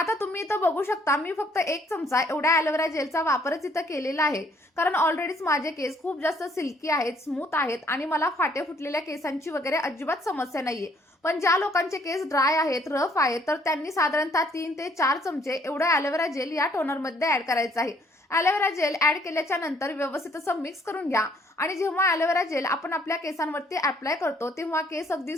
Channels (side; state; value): both; normal; correlation 0.64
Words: तुम्ही इथं बघू शकता, मी फक्त 1 चमचा एवढ्या ॲलोवेरा जेलचा वापरच इथं केलेला आहे. कारण ऑलरेडीच माझे केस खूप जास्त सिल्की आहेत, स्मूथ आहेत आणि मला फाटे फुटलेल्या केसांची वगैरे अजिबात समस्या नाहीये. पण ज्या लोकांचे केस ड्राय आहेत, रफ आहेत, तर त्यांनी साधारणतः 3 ते 4 चमचे एवढं ॲलोवेरा जेल या टोनरमध्ये ॲड करायचं आहे. ॲलोवेरा जेल ॲड केल्याच्या नंतर व्यवस्थित असं मिक्स करून घ्या आणि जेव्हा ॲलोवेरा जेल आपण आपल्या केसांवरती अप्लाय करतो, तेव्हा केस अगदी